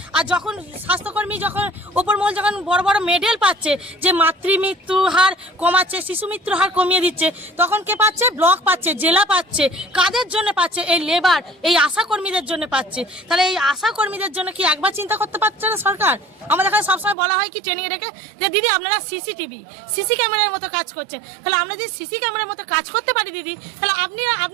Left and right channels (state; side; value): drops out; left; at 17.2 s